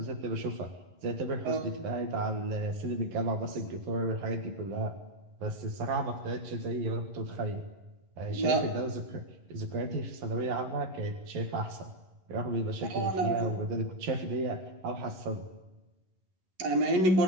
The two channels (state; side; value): late; left; 11 ms